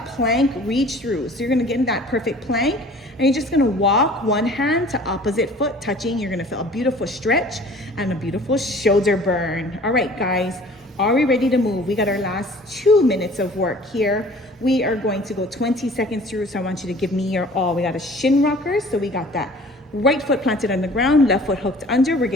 plank reach through. So you're gonna get in that perfect plank, and you're just gonna walk one hand to opposite foot touching. You're gonna feel a beautiful stretch and a beautiful shoulder burn. All right, guys. Are we ready to move? We got our last 2 minutes of work here. We are going to go 20 seconds through, so I want you to give me your all. We got a shin rocker, so we got that right foot planted on the ground, left foot hooked under. We're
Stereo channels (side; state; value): both; normal; correlation 0.48